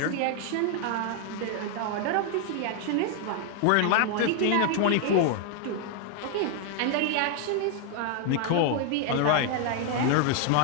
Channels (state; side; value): different; both; correlation 0.00